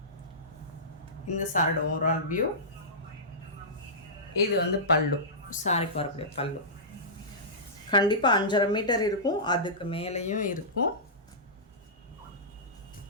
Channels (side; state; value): both; normal; correlation -0.17